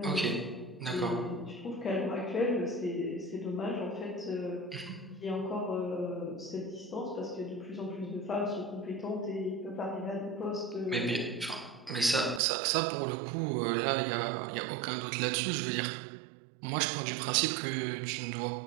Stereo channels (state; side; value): drops out; left; at 12.4 s